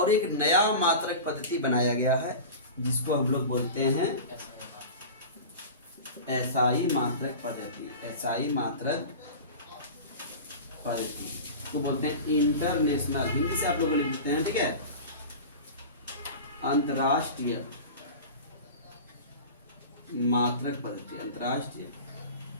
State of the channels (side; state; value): both; inverted; correlation -0.32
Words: एक नया मात्रक पद्धति बनाया गया है जिसको हम लोग बोलते हैं एसआई मात्रक पद्धति। एसआई मात्रक पद्धति तो बोलते हैं इंटरनेशनल, हिंदी से आप लोग लिखते हैं, ठीक है, अंतरराष्ट्रीय मात्रक पद्धति। अंतरराष्ट्रीय